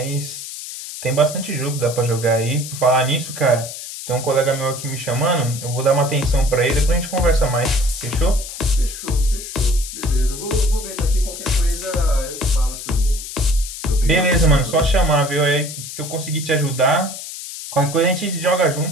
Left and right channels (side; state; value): left; noise; hiss, 10 dB below the sound